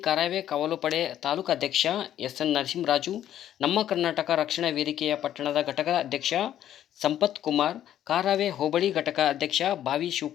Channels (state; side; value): quieter; right; 11.4 dB